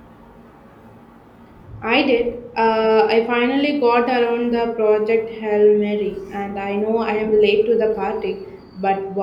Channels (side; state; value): both; identical; correlation 1.00